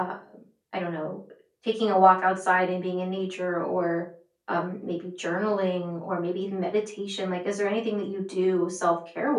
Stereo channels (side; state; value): both; identical; correlation 1.00